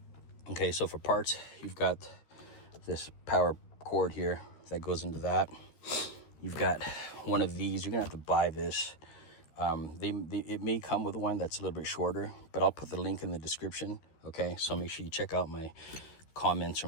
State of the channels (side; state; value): right; late; 13 ms